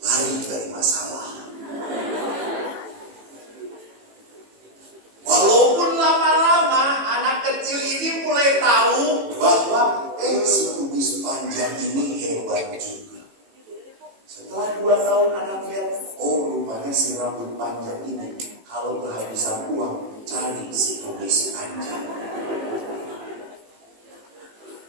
dari masalah. Walaupun lama-lama anak kecil ini mulai tahu bahwa si kumis panjang ini hebat juga. Setelah 2 tahun anak lihat, rupanya si rambut panjang ini kalau kehabisan uang cari si kumis panjang.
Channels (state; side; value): late; left; 18 ms